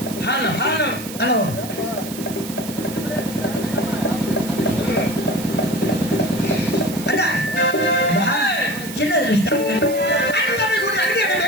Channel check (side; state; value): right; noise; hiss, 12 dB below the sound